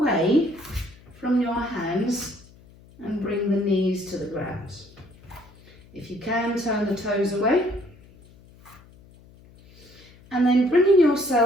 from your hands and bring the knees to the ground. If you can, turn the toes away. And then bringing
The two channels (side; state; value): left; noise; hum, 25 dB below the sound